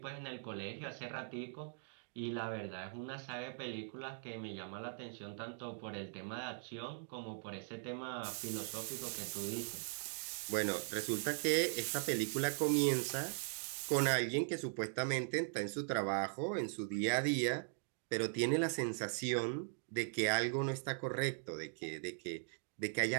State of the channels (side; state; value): left; silent; digital silence